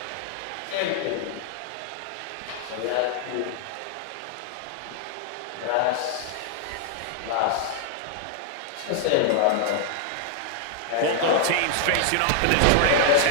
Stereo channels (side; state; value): both; different; correlation 0.00